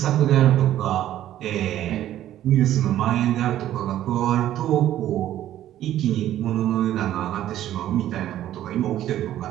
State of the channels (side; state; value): left; quieter; 12.6 dB